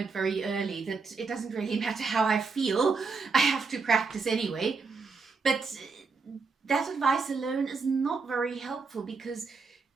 very early that it doesn't really matter how I feel, I have to practice anyway. But that advice alone is not very helpful because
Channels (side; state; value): left; quieter; 4.7 dB